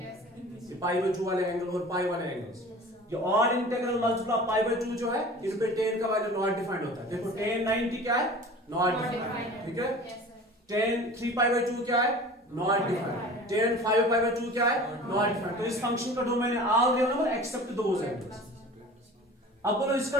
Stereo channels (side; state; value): both; normal; correlation 0.41